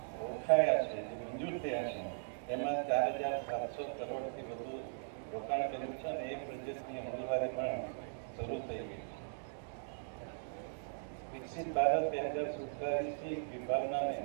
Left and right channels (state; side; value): silent; left; digital silence